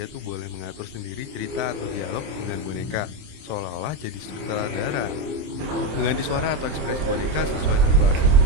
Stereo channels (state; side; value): late; left; 27 ms